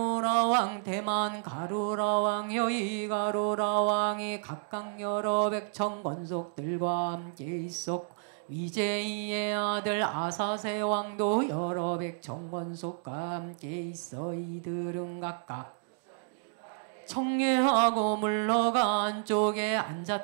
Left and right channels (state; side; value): silent; left; digital silence